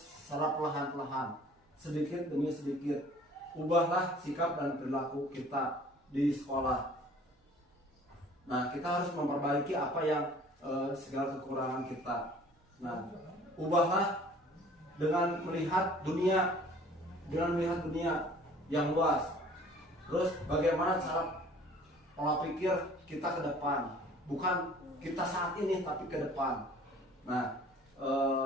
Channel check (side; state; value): both; normal; correlation 0.51